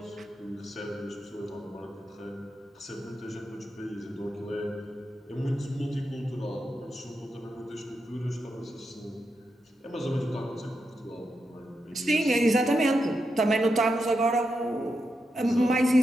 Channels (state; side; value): normal; both; correlation 0.86